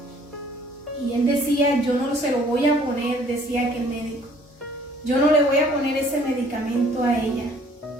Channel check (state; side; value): normal; both; correlation 0.57